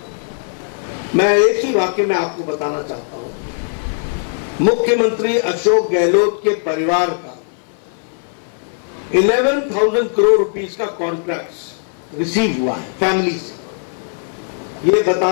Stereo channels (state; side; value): silent; right; 60 dB below the other